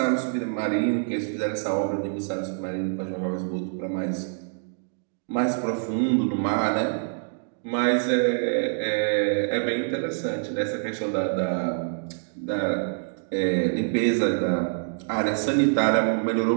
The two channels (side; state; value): left; silent; digital silence